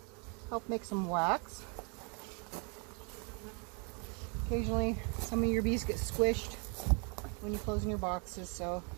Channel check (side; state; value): left; quieter; 34.9 dB